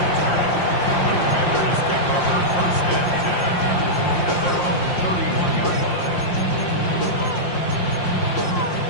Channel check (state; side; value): late; right; 5.7 ms